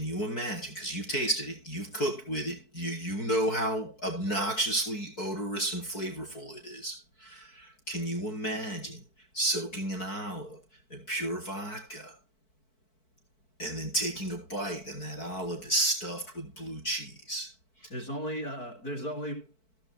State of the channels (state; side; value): late; right; 4.6 ms